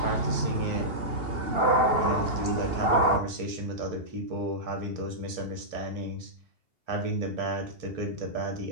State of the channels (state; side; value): late; left; 2.7 ms